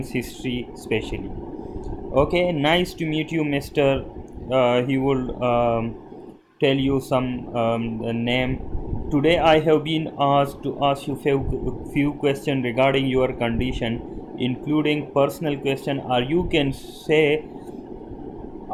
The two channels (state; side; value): identical; both; correlation 1.00